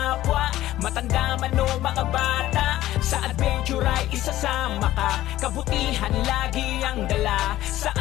matanda man o mga bata. Sa adventure ay isasama ka, kabutihan lagi ang dala.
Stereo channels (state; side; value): quieter; right; 14.7 dB